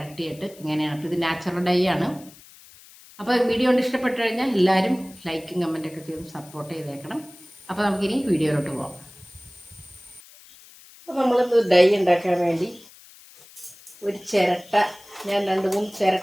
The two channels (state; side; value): noise; left; hiss, 22 dB below the sound